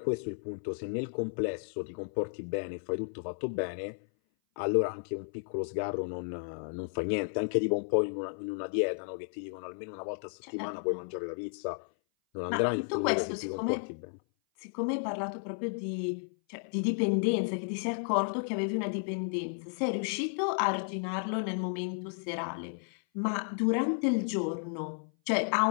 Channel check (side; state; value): right; silent; 56 dB below the other